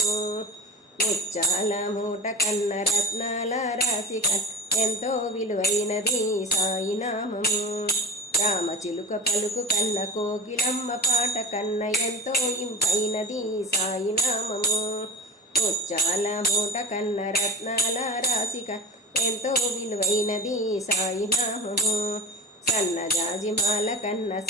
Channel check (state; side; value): normal; both; correlation 0.33